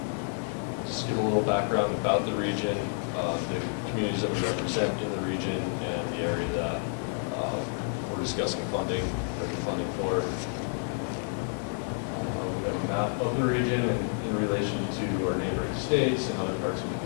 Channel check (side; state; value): right; silent; 56 dB below the other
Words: just give a little background about the region, the communities that we represent in the region, and the area that we're discussing funding for. We have a map of the region in relation to our neighboring states and other parts of